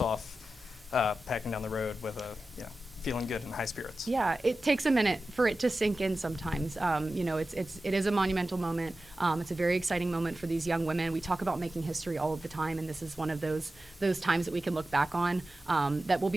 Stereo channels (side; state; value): both; normal; correlation 0.94